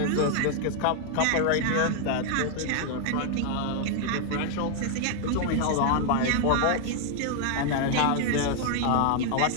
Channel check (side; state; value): both; different; correlation 0.00